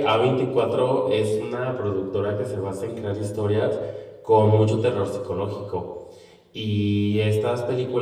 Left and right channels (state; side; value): identical; both; correlation 1.00